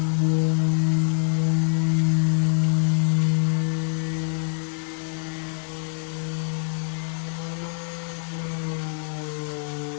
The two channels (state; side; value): silent; right; digital silence